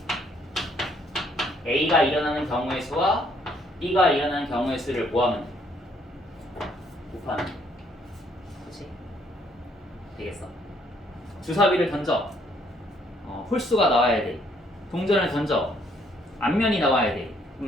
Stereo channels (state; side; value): normal; both; correlation 0.67